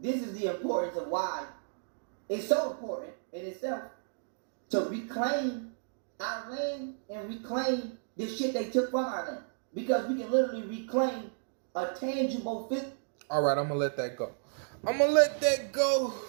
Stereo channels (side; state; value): left; silent; digital silence